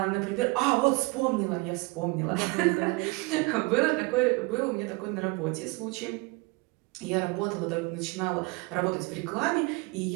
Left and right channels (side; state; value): left; quieter; 26.4 dB